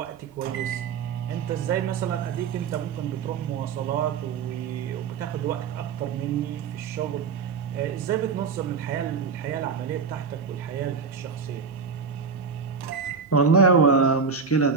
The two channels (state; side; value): quieter; left; 5.6 dB